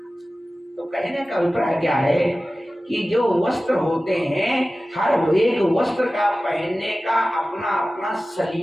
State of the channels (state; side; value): normal; both; correlation 0.96